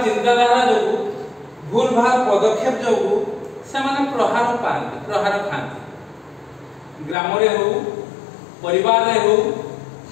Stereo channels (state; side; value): drops out; right; at 7.2 s